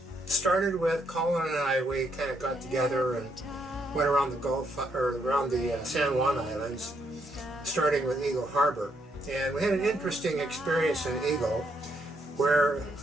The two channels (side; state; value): both; normal; correlation 0.75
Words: Started with Colin and I. We kind of got together and went around the Gulf, or around the San Juan Islands, starting with Eagle Harbor. And we had an interesting experience in Eagle, where